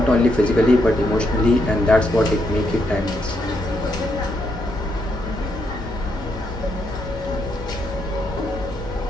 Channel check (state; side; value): normal; both; correlation 0.78